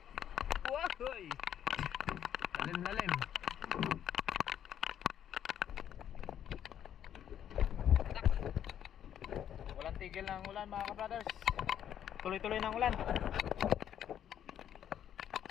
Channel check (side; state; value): right; quieter; 10.0 dB